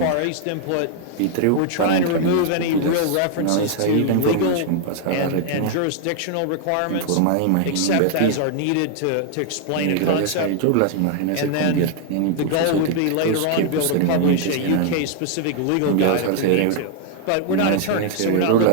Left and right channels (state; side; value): different; both; correlation 0.00